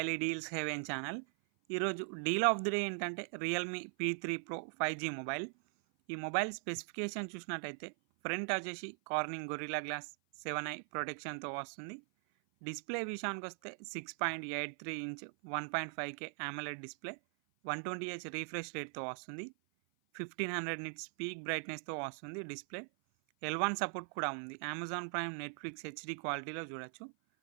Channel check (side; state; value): left; silent; 51 dB below the other